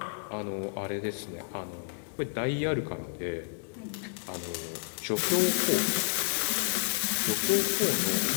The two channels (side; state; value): right; silent; 57 dB below the other